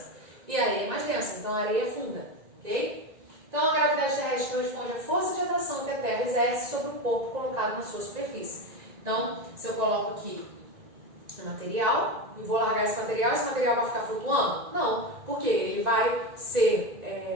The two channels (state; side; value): late; left; 1.9 ms